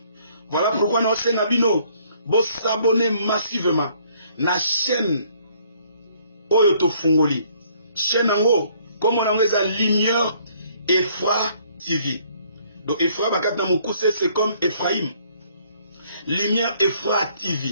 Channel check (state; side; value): inverted; both; correlation -0.63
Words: Voilà pourquoi nous sommes Bino. Vous s'abonnez massivement à la chaîne Oyoto Fungoli. Chaîne Ango, comme on a la lumière et foi TV. Donc Ephra Bakata Moukousse, c'est comme Ephraim. Lumière Ephra